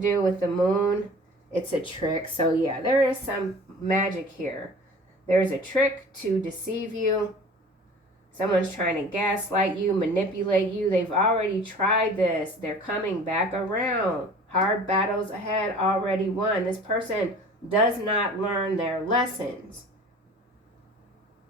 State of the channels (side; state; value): both; normal; correlation 0.44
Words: with the moon. It's a trick. So yeah, there is some magic here. There's a trick to deceive you. Someone's trying to gaslight you, manipulate you. They've already tried this. They're coming back around. Hard battles ahead, already won. This person does not learn their lessons.